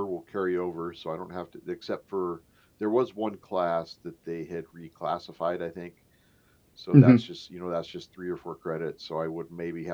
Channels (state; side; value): identical; both; correlation 1.00